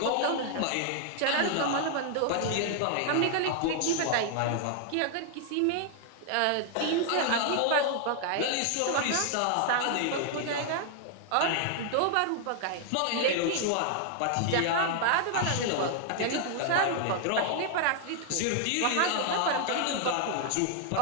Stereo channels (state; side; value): different; both; correlation 0.00